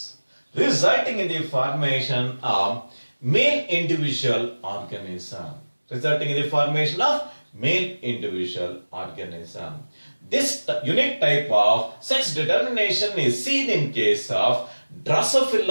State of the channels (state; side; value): inverted; both; correlation -1.00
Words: resulting in the formation of male individual organism. This unique type of sex determination is seen in case of